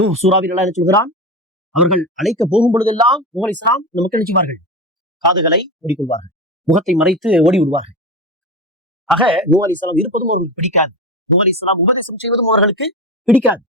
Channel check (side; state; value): both; normal; correlation 0.23